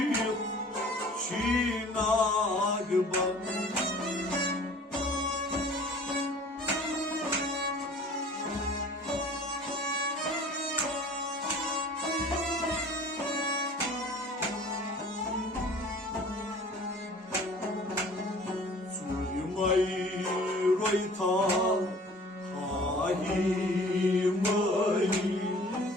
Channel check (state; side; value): normal; both; correlation 0.48